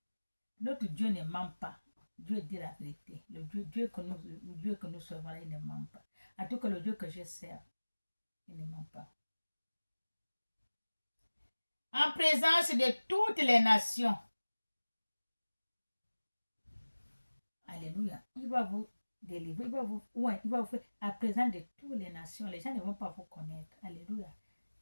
Notre Dieu ne ment pas. Dieu dit la vérité. Le Dieu que nous servons, il ne ment pas. En tout cas, le Dieu que je sers, il ne ment pas. En présence de toutes les nations. Alléluia. Il va vous délivrer. Il va vous faire à présent de toutes les nations. Les gens ne vont pas vous connaître. Alléluia.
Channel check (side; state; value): both; inverted; correlation -1.00